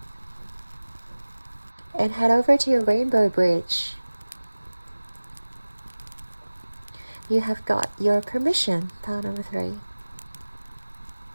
And head over to your rainbow bridge. You have got your permission. Pile number 3.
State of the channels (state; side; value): inverted; both; correlation -1.00